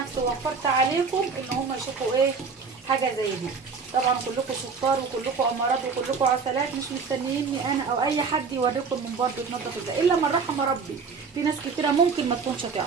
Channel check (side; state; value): left; quieter; 5.2 dB